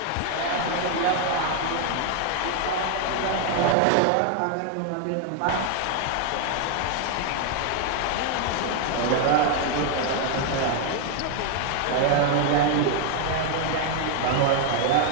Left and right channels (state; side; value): different; both; correlation 0.00